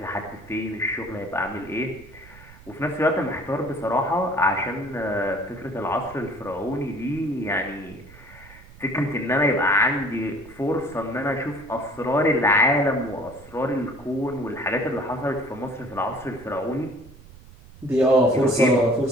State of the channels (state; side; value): noise; right; rumble, 21 dB below the sound